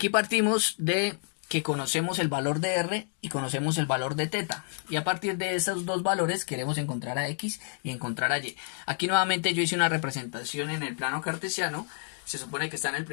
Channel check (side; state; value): right; silent; 56 dB below the other